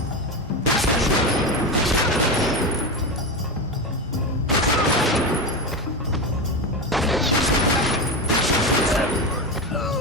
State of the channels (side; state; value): both; normal; correlation 0.17